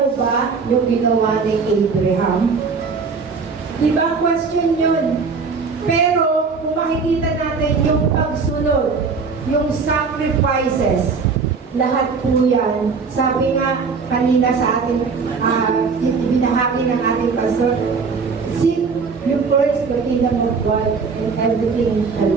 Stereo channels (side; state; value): left; quieter; 5.0 dB